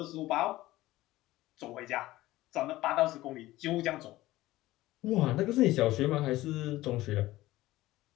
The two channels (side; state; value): right; quieter; 17.1 dB